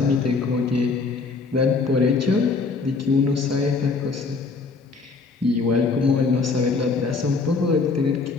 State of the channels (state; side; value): quieter; right; 4.3 dB